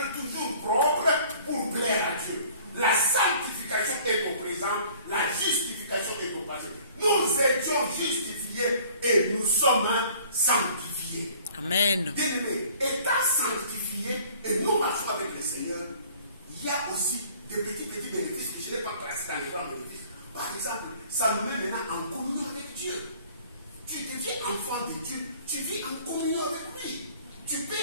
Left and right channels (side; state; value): both; inverted; correlation -0.53